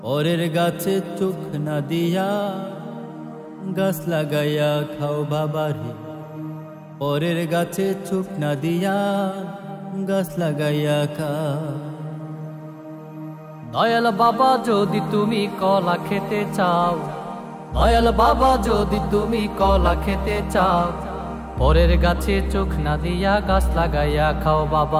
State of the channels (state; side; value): identical; both; correlation 1.00